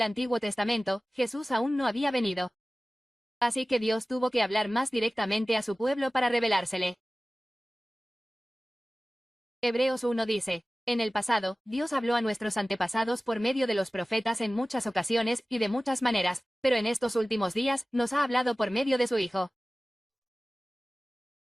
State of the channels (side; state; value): both; normal; correlation 0.97